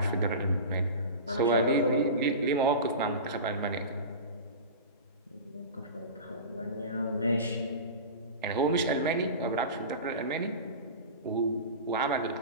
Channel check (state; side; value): inverted; both; correlation -0.30